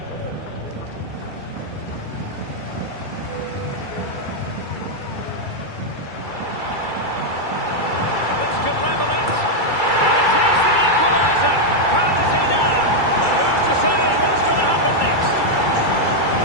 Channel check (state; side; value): late; right; 2.3 ms